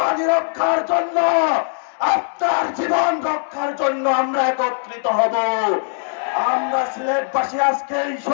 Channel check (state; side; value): silent; right; 66 dB below the other